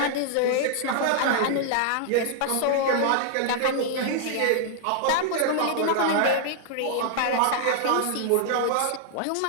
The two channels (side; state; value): both; different; correlation 0.00